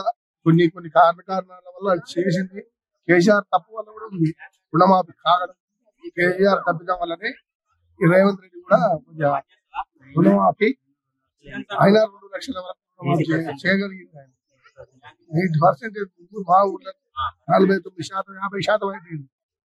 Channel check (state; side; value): identical; both; correlation 1.00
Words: కొన్ని కారణాల వల్ల చేసింది. కేసీఆర్ తప్పు వల్ల కూడా ఉంది రుణమాఫీ కాగడం. కేసీఆర్ తప్పిదం వల్లనే రేవంత్ రెడ్డి కూడా కొంచెం రుణమాఫీ అయినా 2 లక్షల వరకు చేయగలిగింది. ఆయన 8% మా ఊళ్ళో 49%, 50% అయిపోయింది.